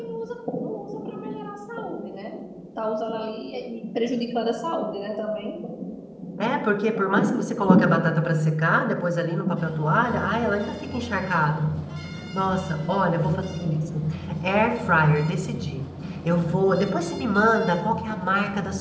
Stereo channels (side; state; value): both; identical; correlation 1.00